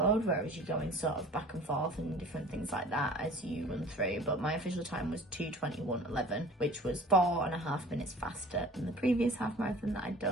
whereas you're going sort of back and forth and different things like that as you run through. But my official time was 2:21.11, which was 4.5 minutes faster than the previous half marathon that I'd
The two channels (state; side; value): normal; both; correlation 0.45